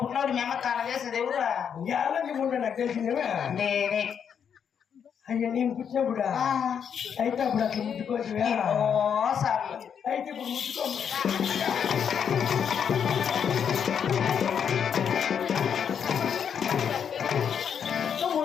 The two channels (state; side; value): quieter; right; 7.7 dB